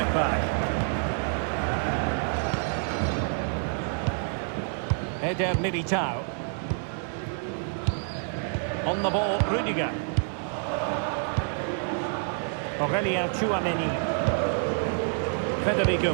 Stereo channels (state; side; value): silent; left; 60 dB below the other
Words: back. Eder Militao. On the ball, Rudiger. Aurelien Tchouaméni. Federico